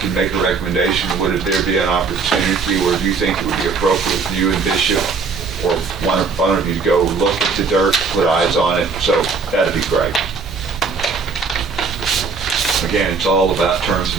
make a recommendation, would there be an opportunity, or do you think it would be appropriate for you and Bishop or one of you to go look at the dirt, put eyes on it? So that'd be great. Again, it's all about terms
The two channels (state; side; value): quieter; left; 4.9 dB